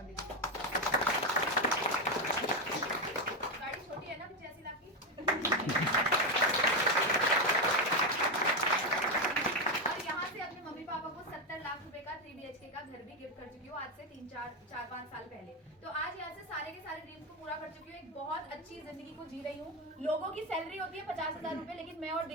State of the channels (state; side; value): normal; both; correlation 0.09